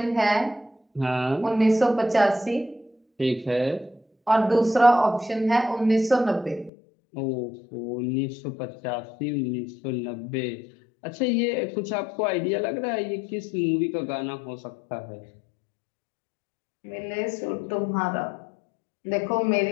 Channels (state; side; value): drops out; right; at 6.7 s